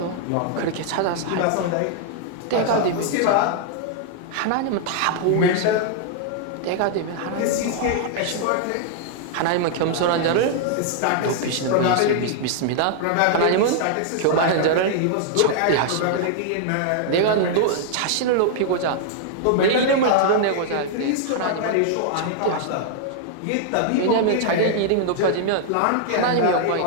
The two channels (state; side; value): different; both; correlation -0.01